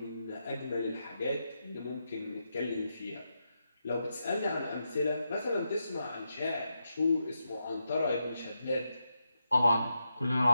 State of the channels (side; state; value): both; inverted; correlation -0.85